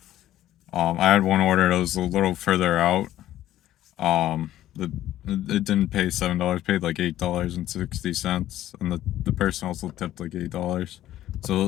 I had one order that was a little further out. The it didn't pay $7, paid like $8.60, and the person also tipped like $8. So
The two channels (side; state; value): right; quieter; 13.3 dB